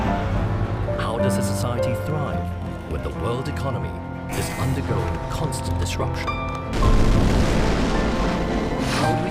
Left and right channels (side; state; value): both; identical; correlation 1.00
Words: How does a society thrive when the world economy is undergoing constant disruption? How do we